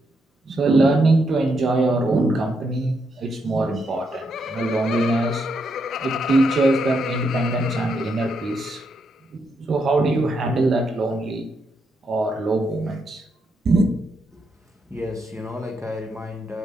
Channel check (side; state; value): both; normal; correlation 0.79